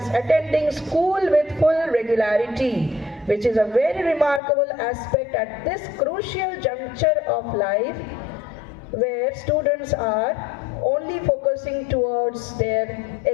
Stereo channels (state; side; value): drops out; right; at 4.4 s